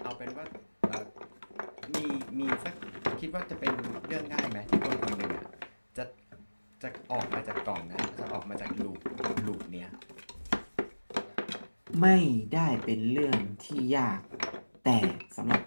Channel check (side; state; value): both; inverted; correlation -1.00